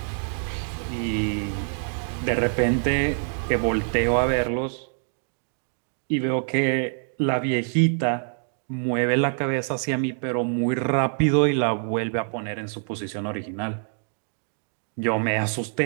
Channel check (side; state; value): left; silent; 60 dB below the other